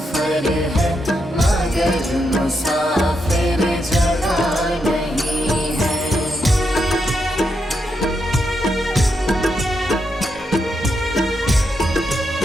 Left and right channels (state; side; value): normal; both; correlation 0.82